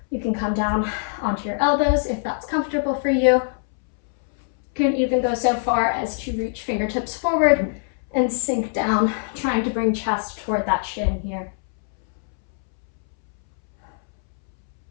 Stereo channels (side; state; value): right; silent; 64 dB below the other